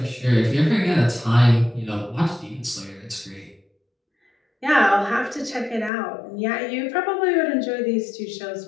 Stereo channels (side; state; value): right; drops out; at 5.9 s